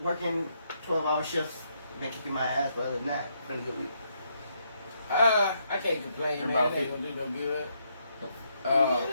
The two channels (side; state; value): both; inverted; correlation -0.76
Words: working 12-hour shifts, been kicking my ass. But other than that, it's been a good week. I can't complain, man. About It ain't gonna do no good. About